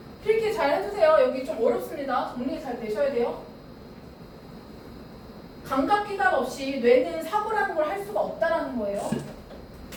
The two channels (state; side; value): identical; both; correlation 1.00